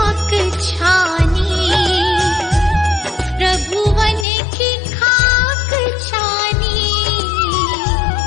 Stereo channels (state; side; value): drops out; right; at 4.2 s